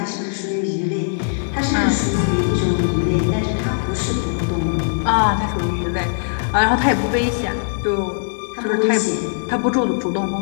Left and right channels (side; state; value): right; silent; digital silence